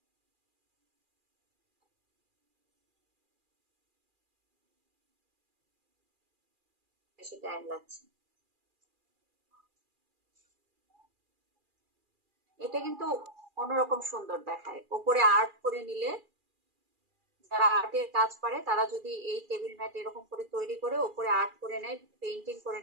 বেশি টাইম লাগছে। এটা কিন্তু অন্যরকম সুন্দর দেখায়, ওপরে আর্ট করে নিলে, যারা আর্টের কাজ পারে তারা যদি এই টেবিল ম্যাট এরকম করে তৈরি করে ওপরে আর্ট করে নেয়, পেইন্টিং করে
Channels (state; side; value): late; left; 2.4 ms